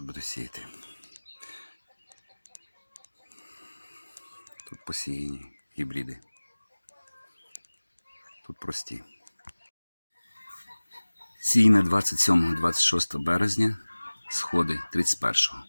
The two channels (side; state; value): both; inverted; correlation -1.00